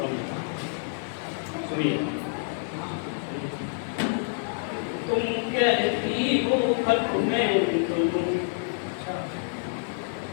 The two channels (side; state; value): right; silent; 60 dB below the other